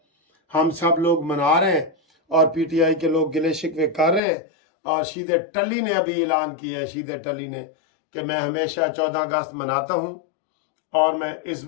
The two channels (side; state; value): right; drops out; at 4.2 s